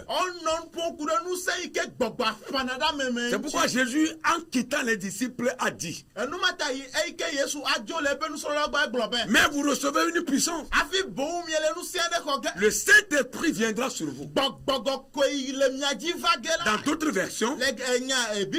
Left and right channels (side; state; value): both; identical; correlation 1.00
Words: On non pon kure nou se ike gbogbo fanada me. C'est pourquoi Jésus, en quittant les disciples, a dit, Enu mata yi ike Yesu ajo le pe nou so lo gba globe. mais vous recevez une puissance. Afi bon miele nou se de ko ge. Le Saint-Esprit viendra sur vous. Gbogbo ko le miaji vage la. Dans d'autres versions,